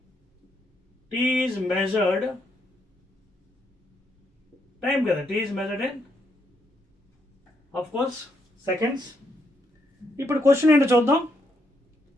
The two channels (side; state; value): both; normal; correlation 0.77